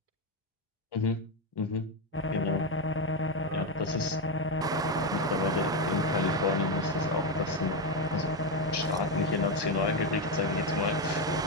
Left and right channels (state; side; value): normal; both; correlation 0.09